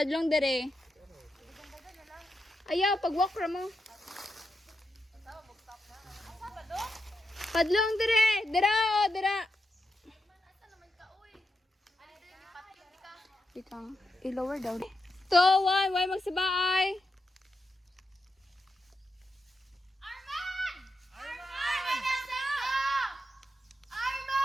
dere. Ayaw, pag-walk ra mo. Padlong dere, dera o, dera. Ikang, i-lower daw. 2, 1, why magsabaay? Arman! Arman! Nasaan ka?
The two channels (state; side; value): normal; both; correlation 0.86